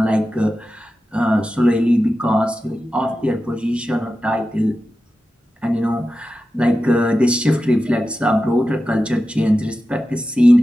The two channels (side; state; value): both; normal; correlation 0.92